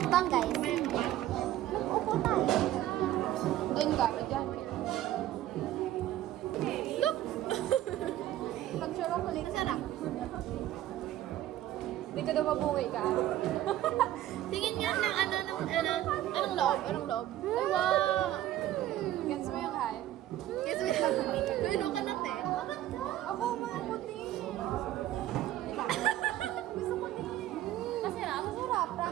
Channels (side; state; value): left; quieter; 13.5 dB